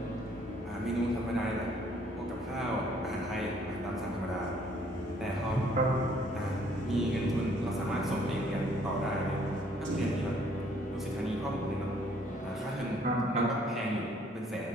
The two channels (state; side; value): normal; both; correlation 0.63